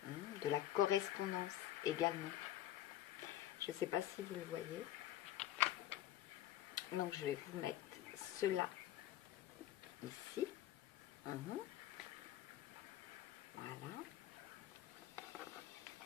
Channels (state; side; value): quieter; right; 12.9 dB